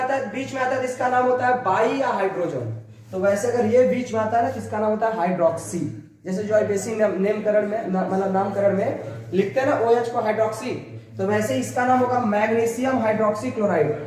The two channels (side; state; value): both; identical; correlation 1.00